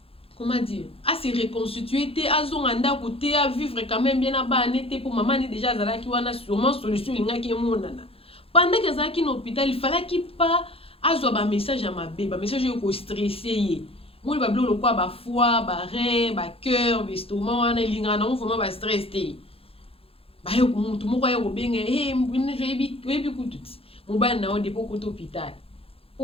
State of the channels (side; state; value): right; late; 0.27 ms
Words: comment dire se reconstituer te azonga ndako te vivre quand même bien na bana te pour maman ni déjà azalaki wana sûrement solution lingaki emonana pendant que azalaki na hôpital il falaki pas azwa ba message ya mabe ba message yo ko stresser ye moni ba bilo lokwa ba foie ba rein ba cœur ba estomac wana elingana na vraiment ba stress te baye mutu moko aye kobenga oyebi kutu ti mobali na yo depo kota hôpital